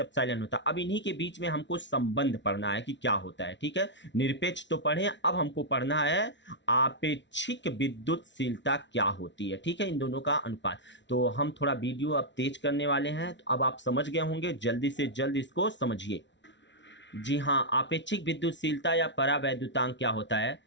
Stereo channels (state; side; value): late; right; 0.52 ms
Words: होता। अब इन्हीं के बीच में हमको संबंध पढ़ना है कि क्या होता है, ठीक है। निरपेक्ष तो पढ़े, अब हमको पढ़ना है आपेक्षिक विद्युतशीलता क्या होती है, ठीक है, इन दोनों का अनुपात। तो हम थोड़ा वीडियो अब तेज करने वाले हैं, तो अब आप समझ गए होंगे, जल्दी से जल्द इसको समझिए। जी हाँ, आपेक्षिक विद्युतशीलता या परावैद्युतांक क्या होता है,